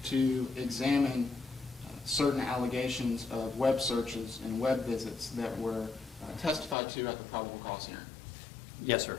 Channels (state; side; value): drops out; right; at 6.8 s